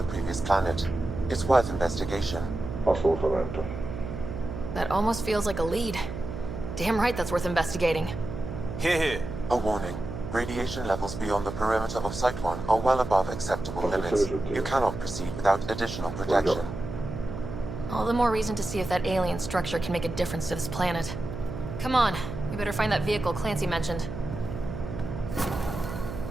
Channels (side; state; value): right; noise; hum, 7 dB below the sound